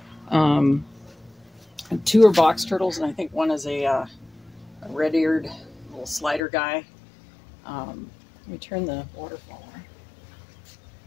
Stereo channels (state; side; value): drops out; right; at 6.4 s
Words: 2 are box turtles, and I think one is a red-eared little slider guy. Let me turn the waterfall on. I